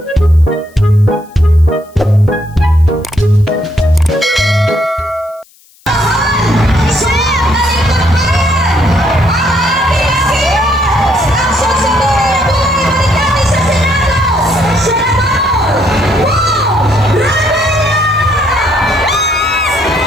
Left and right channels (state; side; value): noise; left; hiss, 30 dB below the sound